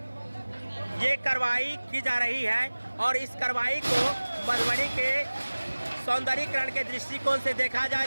ये कार्रवाई की जा रही है और इस कार्रवाई को मधुबनी के सौंदर्यीकरण के दृष्टिकोण से देखा जाए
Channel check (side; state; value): both; inverted; correlation -1.00